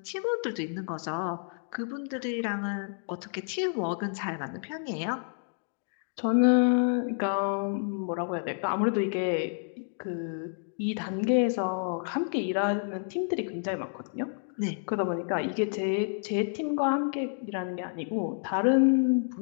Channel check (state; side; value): silent; right; digital silence